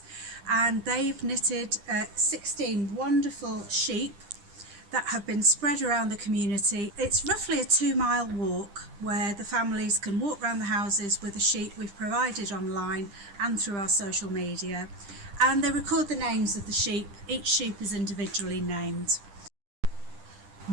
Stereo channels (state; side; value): late; left; 10 ms